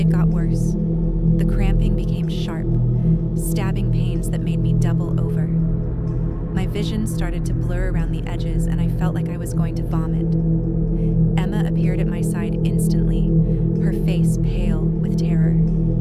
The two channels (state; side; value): identical; both; correlation 1.00